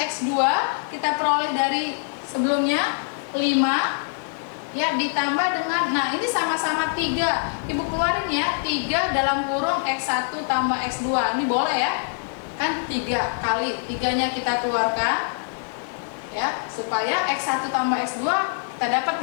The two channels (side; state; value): right; silent; digital silence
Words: kita peroleh dari sebelumnya 5 ya, ditambah dengan, nah ini sama-sama 3. Ibu keluarin ya, 3 dalam kurung X1 tambah X2. Ini boleh ya, kan 3 kali 3-nya kita keluarkan ya, supaya X1 tambah X2 kita dapat